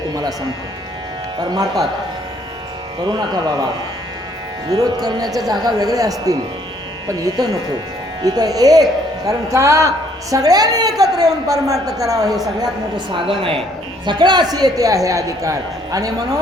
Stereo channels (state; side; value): normal; both; correlation 0.64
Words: तुम्हाला सांगतो. तर मारतात. करू नका बाबा. विरोध करण्याच्या जागा वेगळ्या असतील, पण इथं नको. इथं एक, कारण का सगळ्यांनी एकत्र येऊन परमार्थ करावा हे सगळ्यात मोठं साधन आहे. सगळ्याशी येते आहे अधिकार. आणि